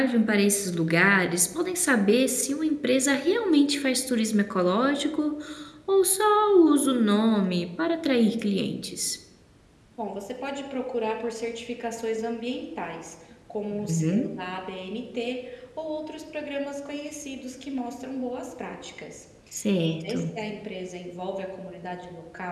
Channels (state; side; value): identical; both; correlation 1.00